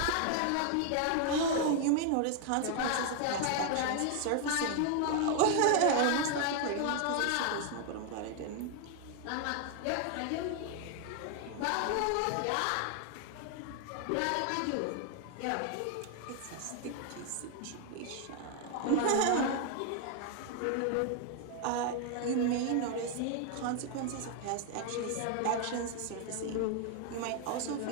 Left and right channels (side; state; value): both; different; correlation 0.00